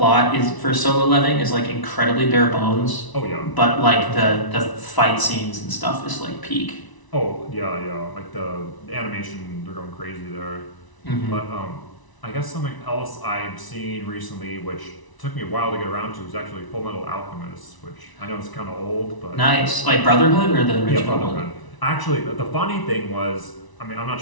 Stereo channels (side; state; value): right; late; 1.0 ms